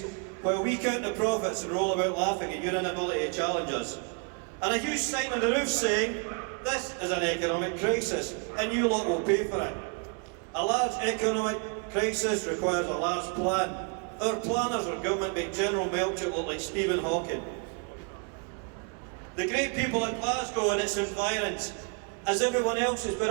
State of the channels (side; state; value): left; quieter; 37.1 dB